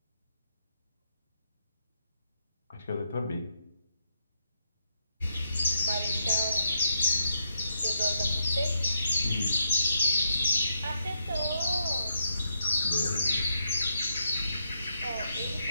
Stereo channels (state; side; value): inverted; both; correlation -0.79